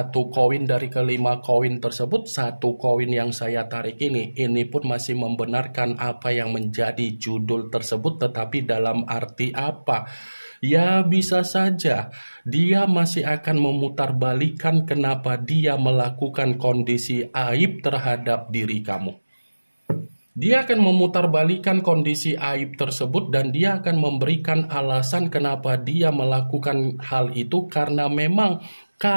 koin dari kelima koin tersebut, satu koin yang saya tarik ini pun masih membenarkan apa yang menjadi judul tersebut. Tetapi dalam arti apa? Ya, bisa saja dia masih akan memutarbalikkan kenapa dia melakukan kondisi aib terhadap diri kamu. Dia akan memutarbalikkan kondisi aib tersebut dan dia akan memberikan alasan kenapa dia melakukan hal itu, karena memang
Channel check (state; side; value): inverted; both; correlation -1.00